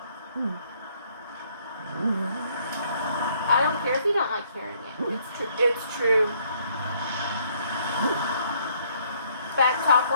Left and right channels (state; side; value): inverted; both; correlation -0.66